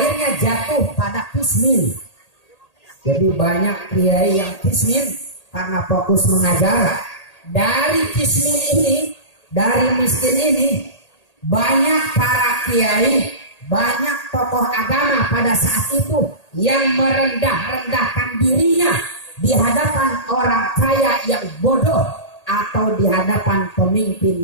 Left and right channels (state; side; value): late; right; 1.8 ms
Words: jatuh pada kismin. Jadi banyak kiai yang kismin karena fokus mengajar. Dari kismin ini, dari miskin ini, banyak para kiai, banyak tokoh agama pada saat itu yang merendah-rendahkan dirinya di hadapan orang kaya yang bodoh atau di hadapan